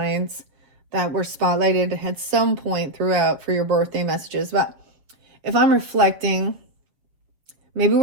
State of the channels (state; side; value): late; left; 7.1 ms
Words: that were spotlighted at some point throughout for your birthday messages. But if I'm reflecting, maybe